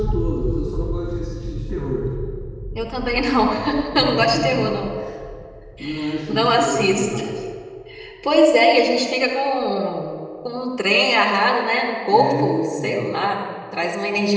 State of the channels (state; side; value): identical; both; correlation 1.00